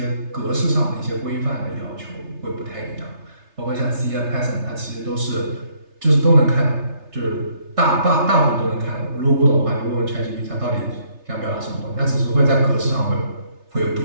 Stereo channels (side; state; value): left; late; 3.3 ms